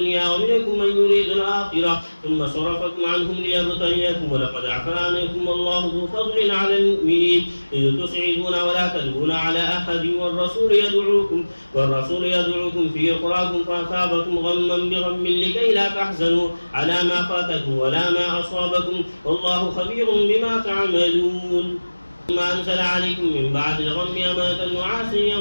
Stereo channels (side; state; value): both; inverted; correlation -1.00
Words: ومنكم من يريد الآخرة ثم صرفكم عنهم ليبتليكم ولقد عفا عنكم والله ذو فضل على المؤمنين إذ تسعدون ولا تلوون على أحد والرسول يدعوكم في أخراكم فأصابكم غما بغم لكي لا تحزنوا على ما فاتكم ولا ما أصابكم والله خبير بما تعملون. ثم أنزل عليكم من بعد الغم أمانة نعاسا